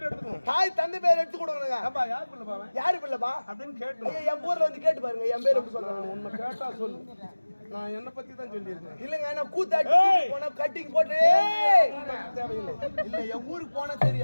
எடுத்துக்கணும் தாய் தந்தை பேர் எடுத்து கொடுக்கணுங்க அப்பா யார் பிள்ளை பாவன் யாரு பிள்ளைப்பா அப்படின்னு கேட்டு என் ஊர்ல வந்து கேட்டு பாருங்க என் பேர் எப்படி சொல்றாங்க உன்னை கேட்டா சொல்லு நான் என்ன பத்தி தான் சொல்லியிருக்கேன் இல்லங்க நான் கூத்தாட்டி போன கட்டிங் போட்டு தேவையில்லை இல்ல என் ஊருக்கு போனா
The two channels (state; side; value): inverted; both; correlation -1.00